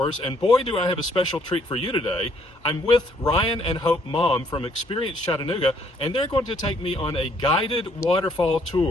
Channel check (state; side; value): normal; both; correlation 0.66